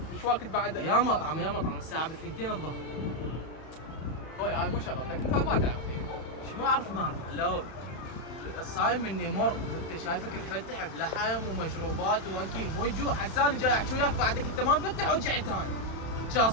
ايش وقت بعد يا مطعم الساعة ب2 الظهر. واي هاي مو شغلتك انت ما تعرف. ايش ما اعرف علوي. الصايم مني مر وانت شايفك مفتح بلحم ومشروبات واكل مو يجوع حساني جاي احكي وياك بعدك انت ما مفتح ورجعت ثاني. شا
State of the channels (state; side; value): late; right; 31 ms